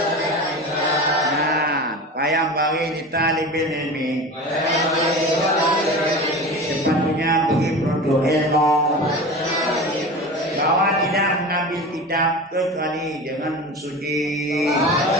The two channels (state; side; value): normal; both; correlation 0.31